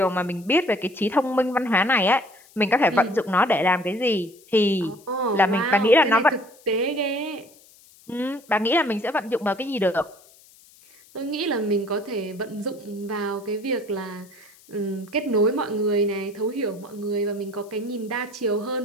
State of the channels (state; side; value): noise; left; hiss, 26 dB below the sound